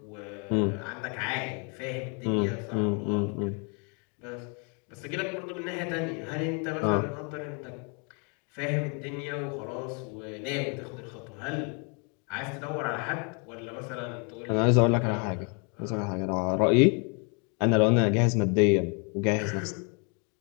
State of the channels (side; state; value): right; quieter; 36.0 dB